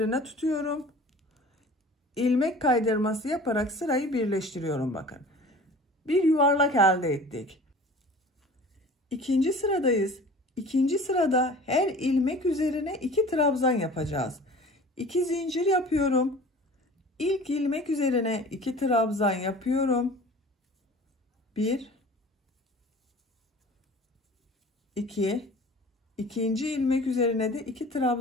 tutuyorum. İlmek kaydırması yaparak sırayı birleştiriyorum bakın. Bir yuvarlak elde ettik. İkinci sıradayız. İkinci sırada her ilmek üzerine 2 trabzan yapacağız. 2 zincir yapıyorum. İlk ilmek üzerine 2 trabzan yapıyorum. 1 2 İkinci ilmek üzerine de 2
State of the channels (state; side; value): normal; both; correlation 0.43